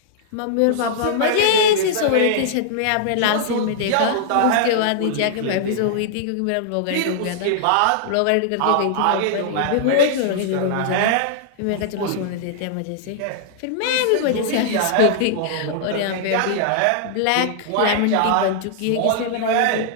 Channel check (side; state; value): both; different; correlation -0.01